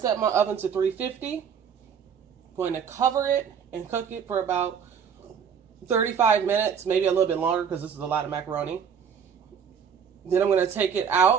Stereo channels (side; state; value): left; quieter; 7.3 dB